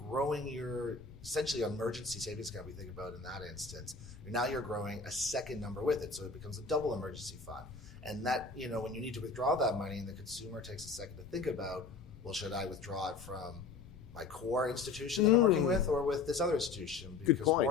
your essentially emergency savings account, we think about in that instance, now you're growing a second number with it, so it becomes a double emergency fund. And that, when you need to withdraw that money and the consumer takes a second to think about, well, should I withdraw it from my core institution that I'm working with or with this other institution? Because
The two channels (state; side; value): quieter; right; 4.6 dB